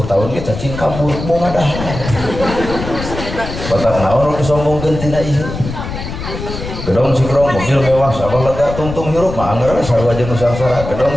tahun ge cacing kabur mau ngadah batak naon nu disombongkeun tina ieu gedong sikrong mobil mewah sabah lega tungtung hirup mah anggar sarua jeung nusangsara gedong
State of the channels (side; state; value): left; noise; rumble, 8 dB below the sound